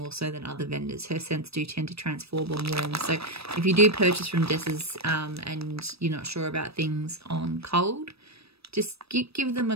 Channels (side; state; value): left; late; 0.78 ms